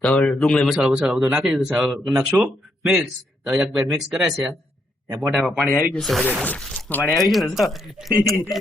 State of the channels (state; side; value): normal; both; correlation 0.77